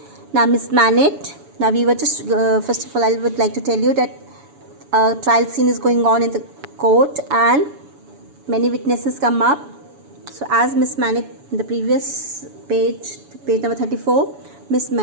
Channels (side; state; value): left; late; 7.1 ms